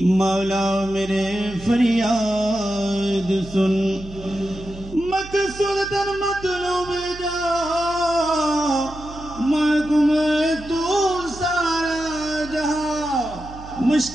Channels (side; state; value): right; noise; hum, 15 dB below the sound